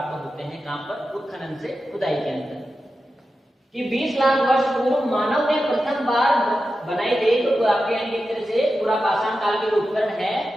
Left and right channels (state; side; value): normal; both; correlation 0.91